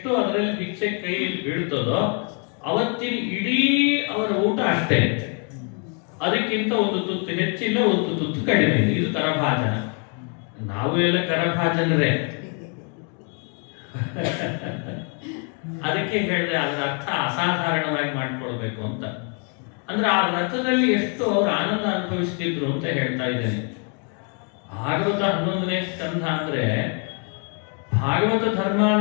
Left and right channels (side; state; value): right; quieter; 39.5 dB